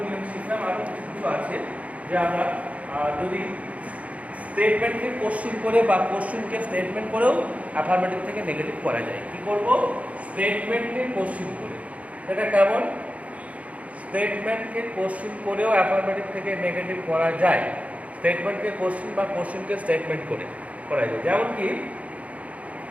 নিয়ম শিখলাম। আরও কিছু কিছু আছে যে আমরা যদি স্টেটমেন্টকে কোশ্চেন করে বা কোশ্চেনকে স্টেটমেন্ট করেও অ্যাফার্মেটিভ থেকে নেগেটিভ করা যায়। কি করব, স্টেটমেন্টকে কোশ্চেন করে। এটা কেমন, স্টেটমেন্টকে কোশ্চেন করেও অ্যাফার্মেটিভ থেকে নেগেটিভ করা যায়। স্টেটমেন্টকে কোশ্চেন বা কোশ্চেনকে স্টেটমেন্ট করে করা যায়। যেমন কি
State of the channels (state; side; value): late; left; 0.066 ms